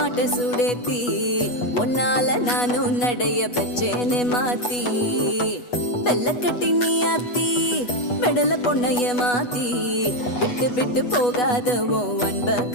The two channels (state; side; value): late; right; 8.2 ms